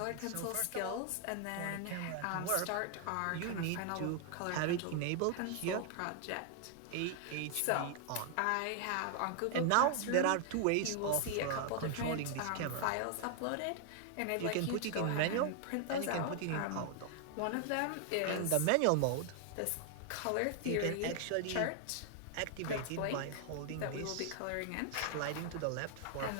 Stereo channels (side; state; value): both; different; correlation 0.00